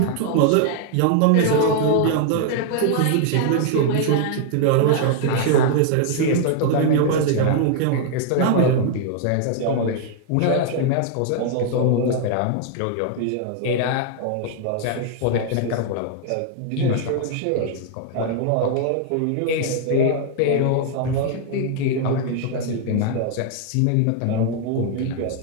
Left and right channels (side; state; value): both; different; correlation 0.00